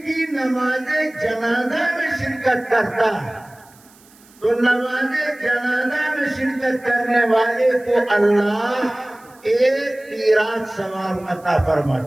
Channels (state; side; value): noise; right; hiss, 28 dB below the sound